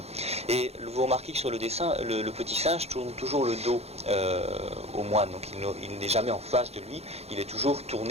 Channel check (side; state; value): left; late; 0.30 ms